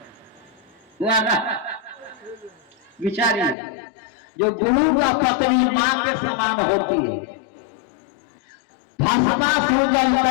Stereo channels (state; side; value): drops out; right; at 3.6 s